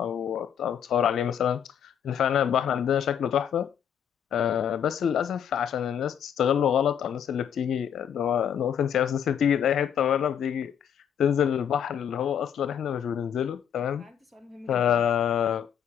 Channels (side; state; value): right; quieter; 8.7 dB